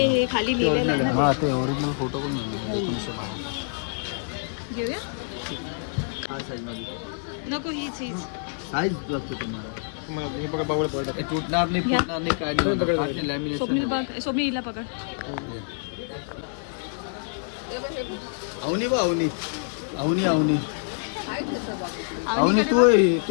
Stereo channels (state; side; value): silent; right; 58 dB below the other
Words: हे खाली लिहिलेलं आहे ना हां ते ओरिजिनल फोटो पण नाही ते. घेऊया हा साईजमध्ये नको हीच हीच साईज लागतो तुम्हाला ते तुटणार नाही घ्या. फुटणार नाही काय नाही लॅमिनेशन स्वप्नील बघ स्वप्नील हिला पकड अवनी बा अवनी अवनी अवनी अवनी अवनीकडे तू बघ. आहे